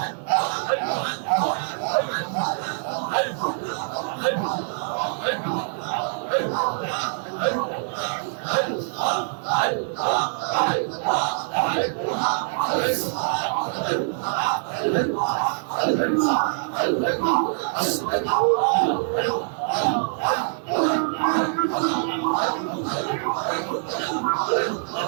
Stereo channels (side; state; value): left; silent; 62 dB below the other